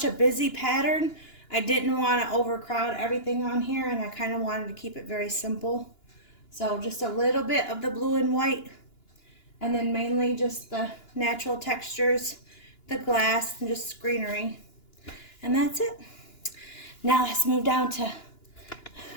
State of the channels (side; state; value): right; late; 2.9 ms